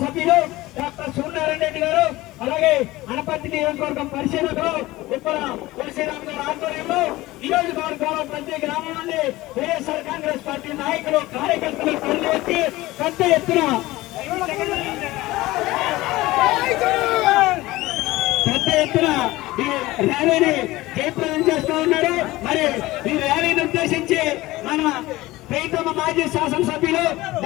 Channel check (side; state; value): right; quieter; 18.6 dB